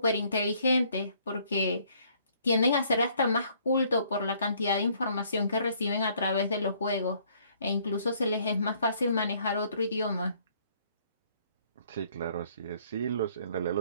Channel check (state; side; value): inverted; both; correlation -0.62